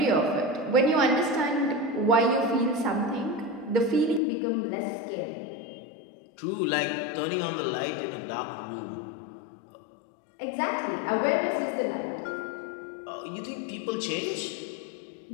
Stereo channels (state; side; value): drops out; right; at 4.2 s